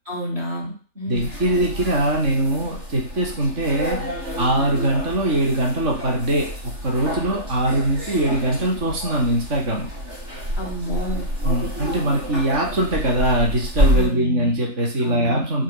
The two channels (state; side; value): late; left; 3.4 ms